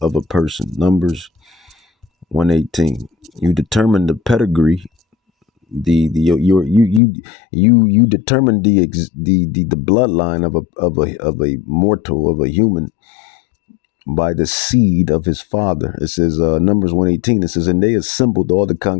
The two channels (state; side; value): drops out; right; at 7.0 s